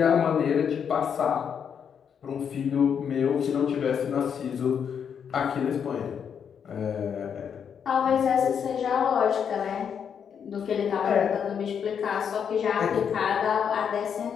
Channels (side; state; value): right; quieter; 7.5 dB